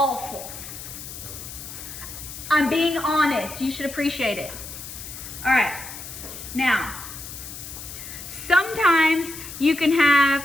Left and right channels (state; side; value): noise; left; hiss, 11 dB below the sound